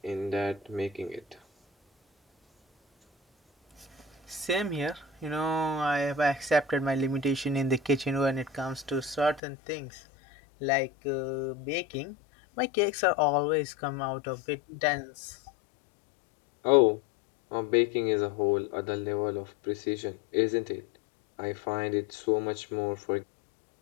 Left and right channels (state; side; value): drops out; right; at 9.4 s